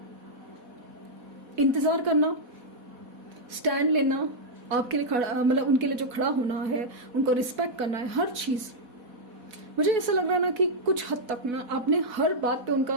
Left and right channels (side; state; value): left; late; 4.1 ms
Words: इंतजार करना, स्टैंड लेना, आपके लिए खड़ा, उनके लिए जो खड़ा होना है, उनको रिस्पेक्ट करना है, हर चीज। मुझे ऐसा लग रहा है ना कि कुछ हद तक ना आपने हर बात पे